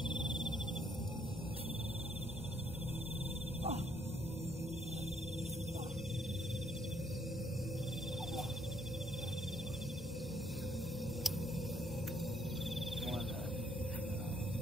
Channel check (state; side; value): normal; both; correlation 0.69